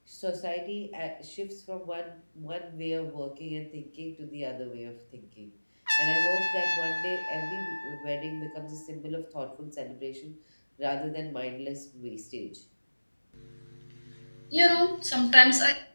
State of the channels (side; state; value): both; inverted; correlation -1.00